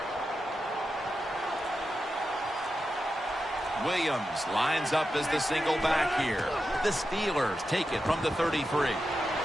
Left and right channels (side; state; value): both; normal; correlation 0.90